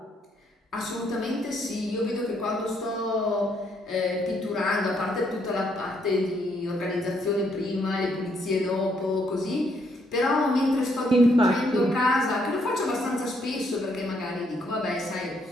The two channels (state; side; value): normal; both; correlation 0.72